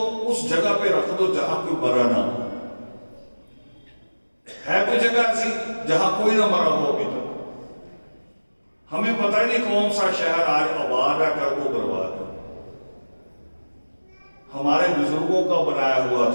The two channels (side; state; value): both; inverted; correlation -1.00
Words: उस जगह पे रख दो जहां कोई मरा ना हो। है कोई जगह ऐसी जहां कोई ना मरा हो अभी तक? हमें पता ही नहीं कौन सा शहर आज आबाद है, कर वो बर्बाद है। हमारे बुजुर्गों का बनाया हुआ